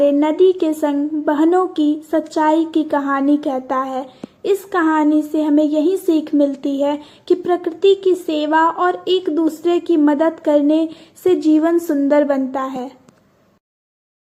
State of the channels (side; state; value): both; identical; correlation 1.00